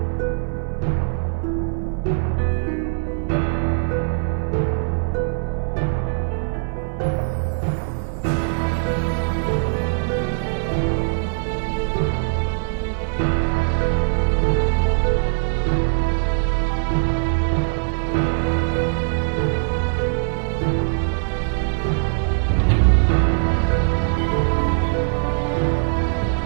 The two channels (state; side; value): silent; left; digital silence